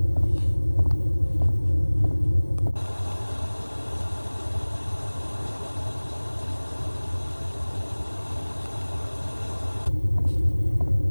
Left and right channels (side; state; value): both; inverted; correlation -1.00